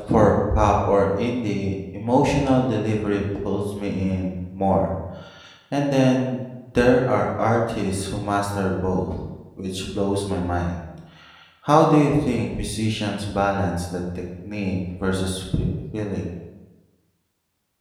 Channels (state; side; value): identical; both; correlation 1.00